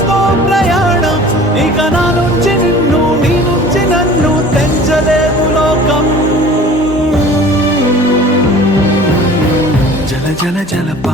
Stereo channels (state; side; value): normal; both; correlation 0.45